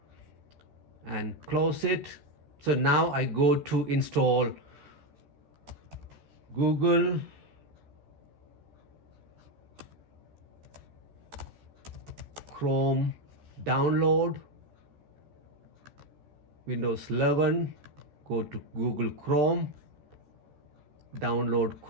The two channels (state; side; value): late; left; 14 ms